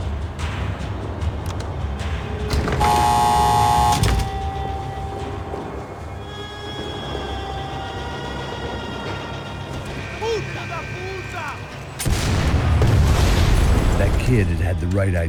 Kid had the right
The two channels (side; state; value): both; identical; correlation 1.00